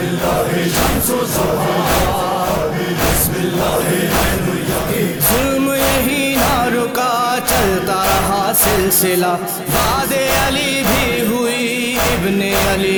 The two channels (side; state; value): both; identical; correlation 1.00